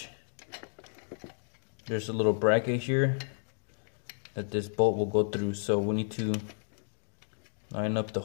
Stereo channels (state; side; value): silent; right; digital silence